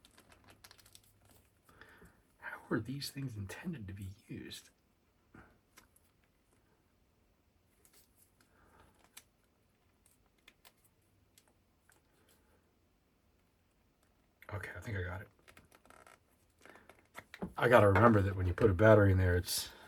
Were these things intended to be used? Okay, I think I got it. I got to remember that when you put a battery in there, it's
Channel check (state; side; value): identical; both; correlation 1.00